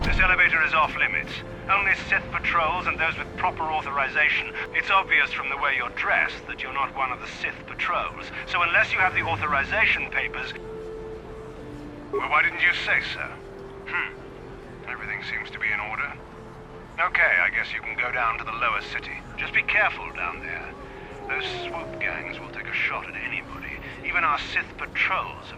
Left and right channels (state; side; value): identical; both; correlation 1.00